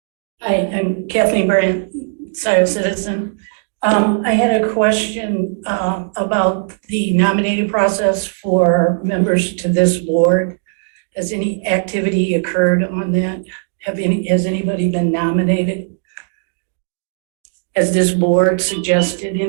Hi, I'm Kathleen Brandt, Scio citizen. I had a question about the nominating process for members to this board. Has any activity occurred on that? Has anybody been nominated? Has this board suggested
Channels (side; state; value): left; silent; digital silence